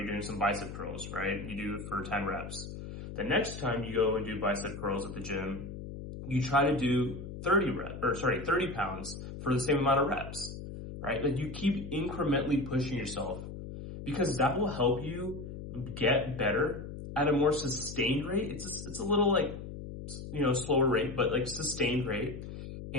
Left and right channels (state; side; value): noise; left; hum, 10 dB below the sound